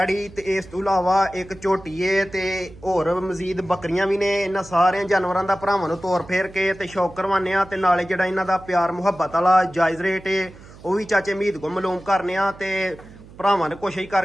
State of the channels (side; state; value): right; noise; hum, 20 dB below the sound